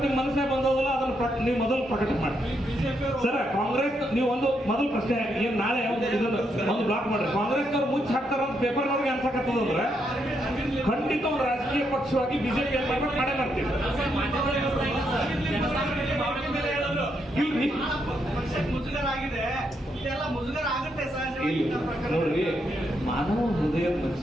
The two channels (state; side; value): normal; both; correlation 0.78